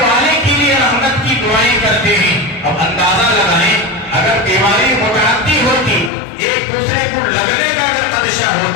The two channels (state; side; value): drops out; right; at 6.1 s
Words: والے کے لیے رحمت کی دعائیں کرتے ہیں۔ اب اندازہ لگائیں، اگر بیماری متعدی ہوتی، ایک دوسرے کو لگنے کا اگر خدشہ